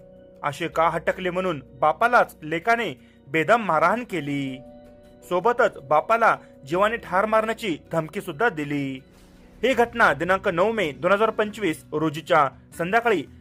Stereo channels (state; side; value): identical; both; correlation 1.00